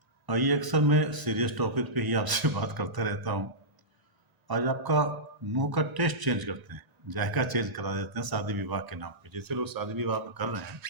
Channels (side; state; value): left; late; 1.9 ms